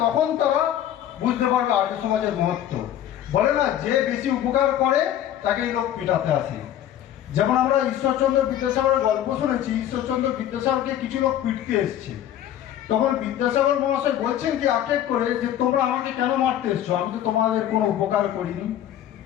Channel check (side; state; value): right; quieter; 11.3 dB